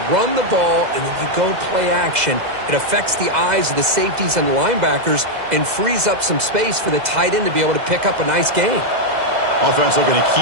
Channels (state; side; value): late; left; 2.0 ms